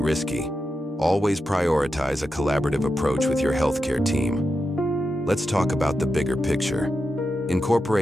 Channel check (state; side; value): normal; both; correlation 0.89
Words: Always prioritize a collaborative approach with your healthcare team. Let's talk about the bigger picture.